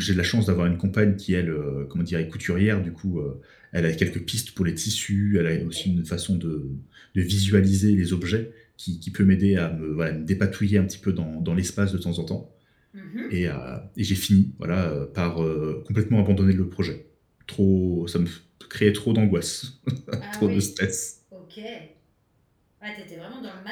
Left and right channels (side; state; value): both; identical; correlation 1.00